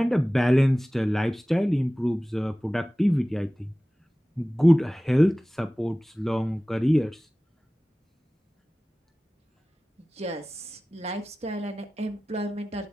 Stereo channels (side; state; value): both; normal; correlation 0.97